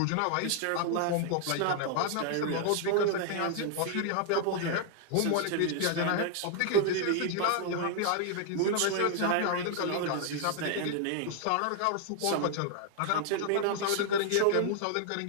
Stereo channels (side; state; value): both; different; correlation 0.00